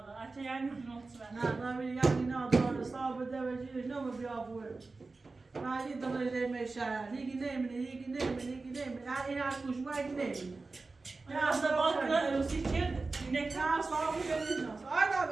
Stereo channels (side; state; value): left; quieter; 3.7 dB